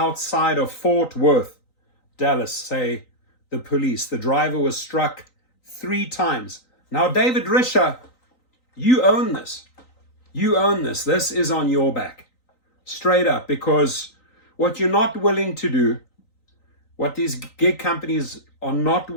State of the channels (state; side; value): late; right; 3.9 ms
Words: of Fort Worth, Dallas, say the police. The driver was struck 3 times. Now, David Risher, you own this. You own this. This is on your back. Straight up, because what you're not willing to do, what these gig companies are not